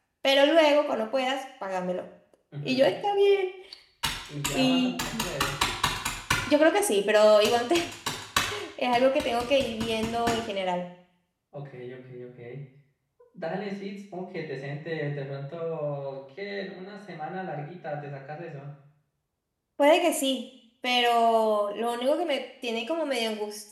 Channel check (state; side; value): identical; both; correlation 1.00